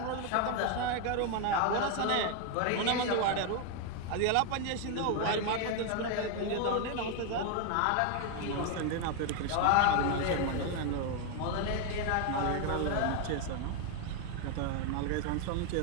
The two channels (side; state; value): both; different; correlation 0.01